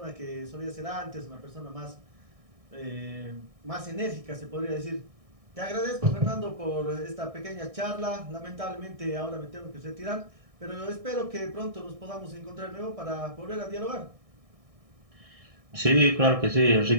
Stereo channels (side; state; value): left; late; 1.6 ms